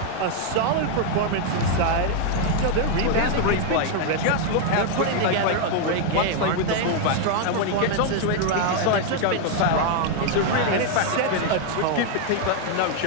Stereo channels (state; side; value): different; both; correlation 0.00